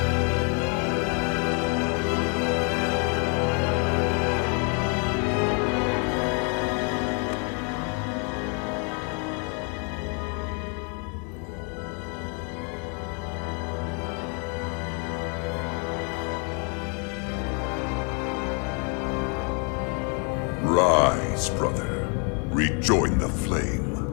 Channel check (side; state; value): right; quieter; 37.7 dB